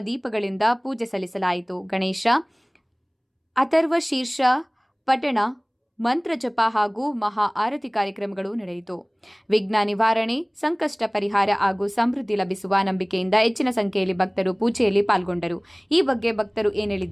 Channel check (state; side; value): identical; both; correlation 1.00